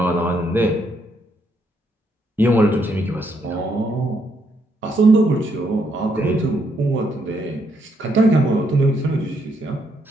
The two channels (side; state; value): both; normal; correlation 0.75